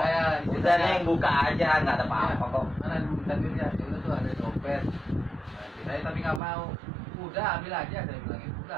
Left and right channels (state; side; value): drops out; left; at 6.4 s